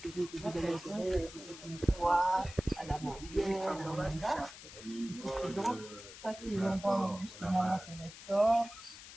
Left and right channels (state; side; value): noise; left; hiss, 15 dB below the sound